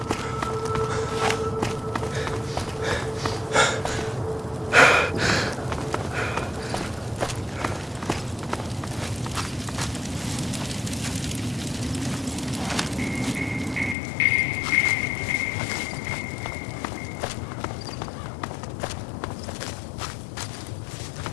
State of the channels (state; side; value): drops out; right; at 14.0 s